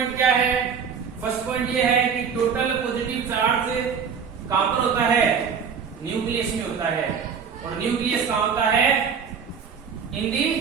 क्या है। फर्स्ट पॉइंट ये है कि टोटल पॉजिटिव चार्ज कहां पर होता है? न्यूक्लियस में होता है। और न्यूक्लियस कहां होता है? In the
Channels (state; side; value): quieter; left; 6.6 dB